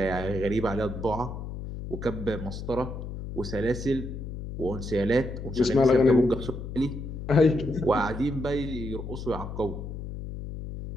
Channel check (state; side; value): noise; left; hum, 8 dB below the sound